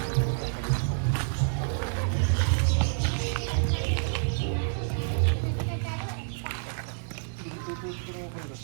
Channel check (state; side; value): silent; left; 59 dB below the other